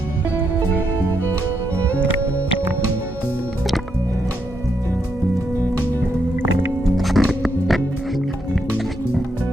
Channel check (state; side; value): normal; both; correlation 0.79